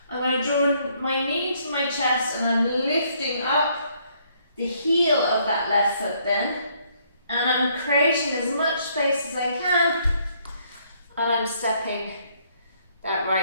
I'm going to draw my knee to my chest and I'm lifting up the heel of that left foot then, and I'm creating as much space as I can, and I'm stepping that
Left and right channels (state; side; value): inverted; both; correlation -0.67